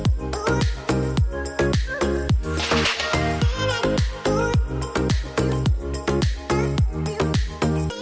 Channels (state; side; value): identical; both; correlation 1.00